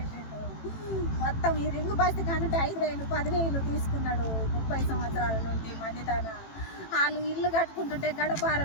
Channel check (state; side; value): late; right; 18 ms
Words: మొత్తం ఈ రింగు బస్తి కానుంటే 5,000 10,000 తీసుకున్నాడు 30 సంవత్సరాల నుండి మంది తన. వాళ్ళు ఇల్లు కట్టుకుంటుంటే